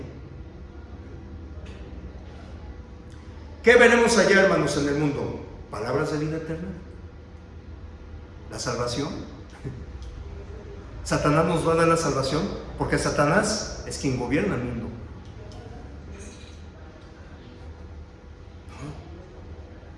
¿Qué veremos allá, hermanos, en el mundo? ¿Palabras de vida eterna? ¿La salvación? ¿Satanás nos va a dar la salvación? Porque Satanás es quien gobierna el mundo.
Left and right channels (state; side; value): identical; both; correlation 1.00